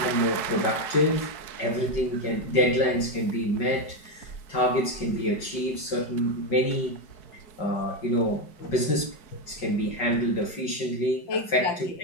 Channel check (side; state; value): right; late; 5.3 ms